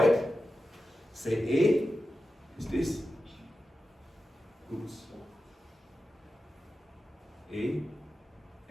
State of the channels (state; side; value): normal; both; correlation 0.92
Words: it, say A is this. Oops. A